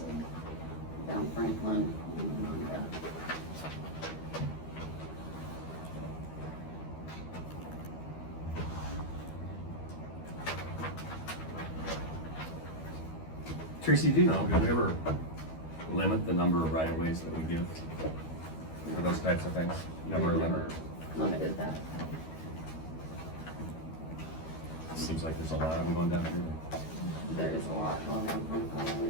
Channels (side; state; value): right; late; 12 ms